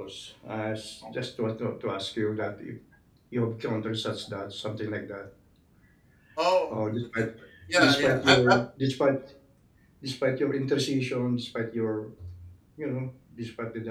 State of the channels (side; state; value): both; identical; correlation 1.00